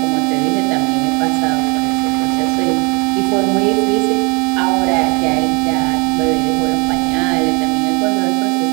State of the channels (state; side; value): quieter; left; 30.3 dB